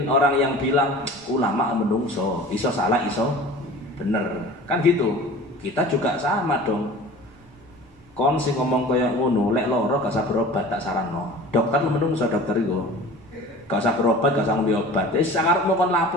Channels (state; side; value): noise; right; rumble, 27 dB below the sound